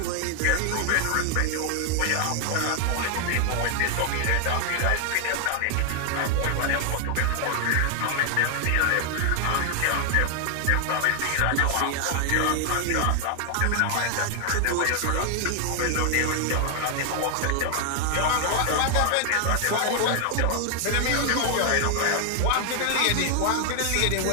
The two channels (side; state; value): both; different; correlation 0.00